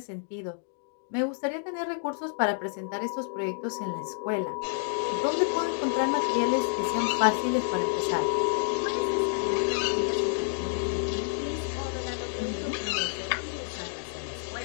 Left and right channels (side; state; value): right; silent; digital silence